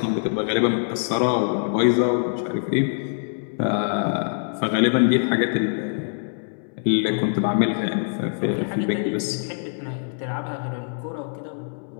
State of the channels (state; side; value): silent; right; 63 dB below the other